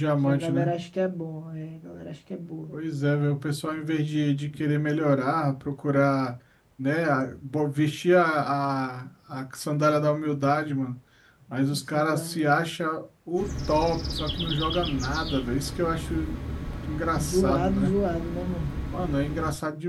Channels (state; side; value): identical; both; correlation 1.00